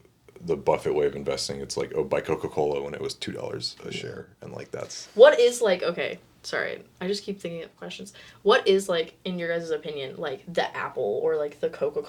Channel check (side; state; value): both; identical; correlation 1.00